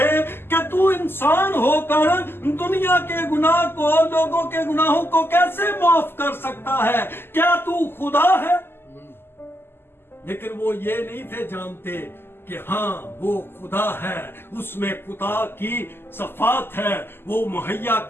कि तू इंसान होकर दुनिया के गुनाह को, लोगों के गुनाहों को कैसे माफ कर सकता है? क्या तू खुदा है? लेकिन वो ये नहीं थे जानते कि हाँ वो खुदा है, उसमें खुदा की सफात है, वो मुहैया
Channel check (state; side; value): late; right; 0.11 ms